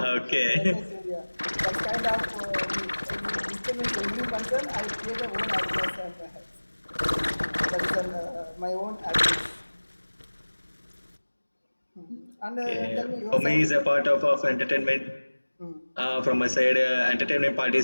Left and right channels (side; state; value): both; inverted; correlation -1.00